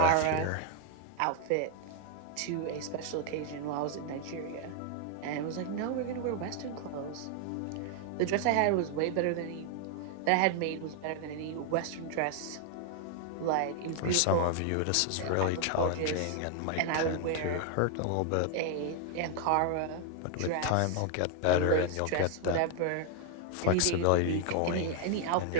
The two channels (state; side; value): different; both; correlation 0.00